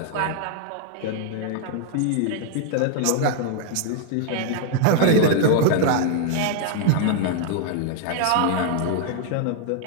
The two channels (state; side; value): different; both; correlation -0.01